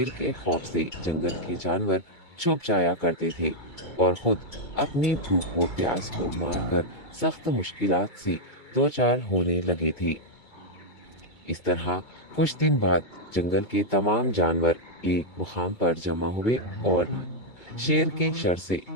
के खौफ से जंगल के जानवर छुप जाया करते थे और खुद अपनी भूख व प्यास को मारकर सख्त मुश्किलात से दो चार होने लगे थे। इस तरह कुछ दिन बाद जंगल के तमाम जानवर एक मुकाम पर जमा हुए और शेर के शर से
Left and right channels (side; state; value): right; late; 2.3 ms